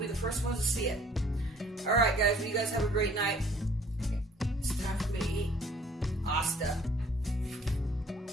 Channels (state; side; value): normal; both; correlation 0.57